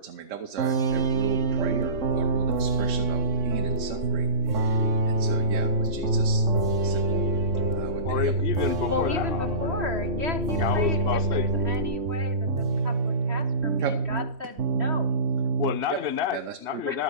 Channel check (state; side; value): late; left; 3.6 ms